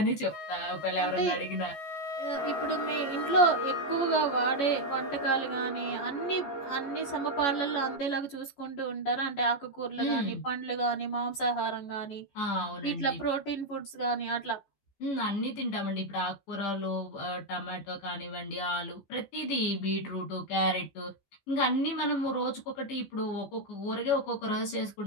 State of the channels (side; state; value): right; late; 14 ms